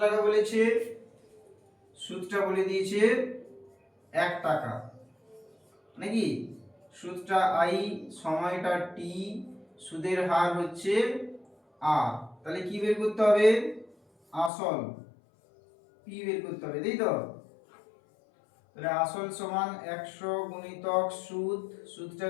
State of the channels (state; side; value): drops out; right; at 14.5 s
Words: টাকা বলেছে, সুদটা বলে দিয়েছে 1 টাকা নাকি। সুদটা আই, সময়টা টি, সুদের হার হচ্ছে আর। তাহলে কি বের করতে হবে, আসল পি বের করতে হবে, তাই তো। তাহলে আসল সমান 100 গুণিতক সুদ, সুদটা